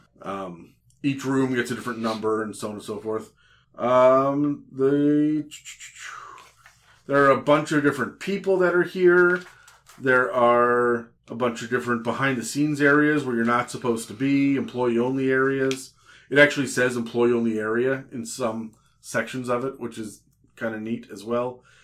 Each room gets a different number and so on and so forth. There are a bunch of different people that are here. There are a bunch of different behind-the-scenes areas where you're not supposed to be, employee-only areas. It actually says employee-only area in some sections of it, which is kind of neat as well.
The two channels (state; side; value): identical; both; correlation 1.00